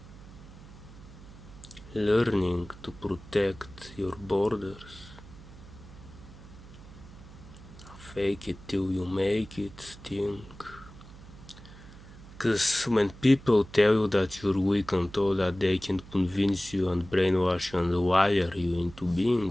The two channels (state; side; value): noise; right; hum, 18 dB below the sound